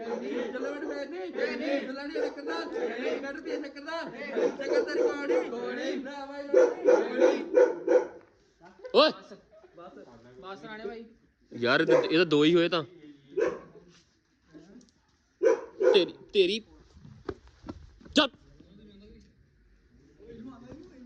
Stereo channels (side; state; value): both; identical; correlation 1.00